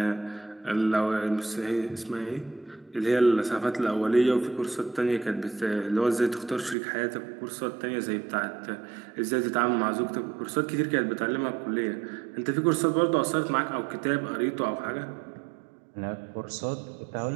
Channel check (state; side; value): drops out; left; at 6.8 s